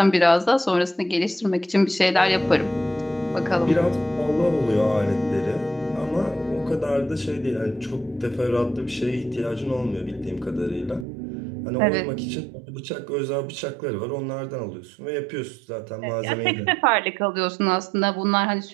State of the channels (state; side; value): drops out; left; at 11.1 s